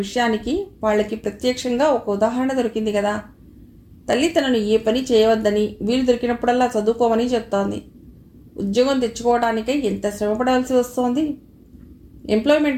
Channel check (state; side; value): identical; both; correlation 1.00